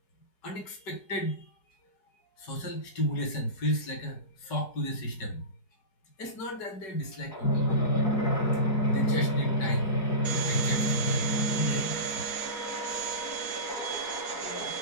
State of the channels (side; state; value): right; late; 4.7 ms